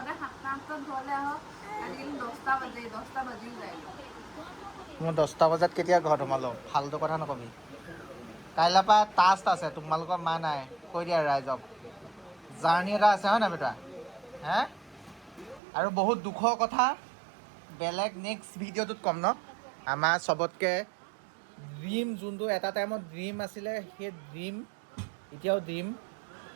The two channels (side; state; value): left; drops out; at 15.6 s